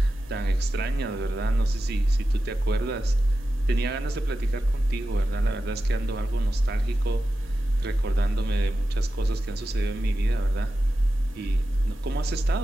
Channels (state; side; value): normal; both; correlation 0.92